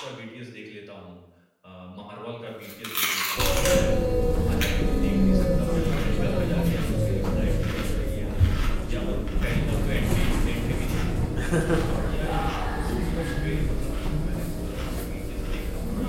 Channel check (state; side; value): identical; both; correlation 1.00